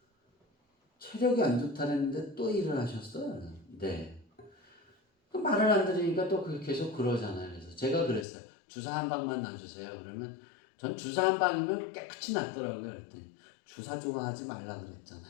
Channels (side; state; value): right; drops out; at 8.2 s